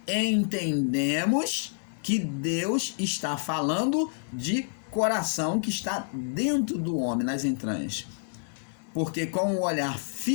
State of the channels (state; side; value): silent; right; digital silence